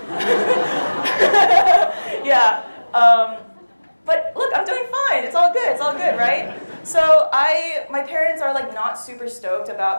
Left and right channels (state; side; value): inverted; both; correlation -1.00